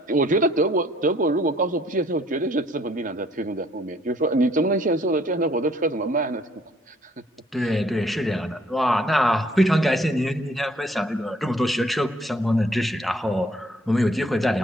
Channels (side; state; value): both; normal; correlation 0.62